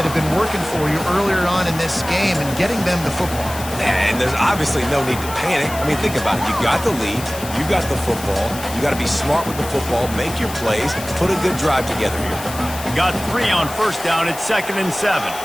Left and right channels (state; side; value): noise; left; hiss, 12 dB below the sound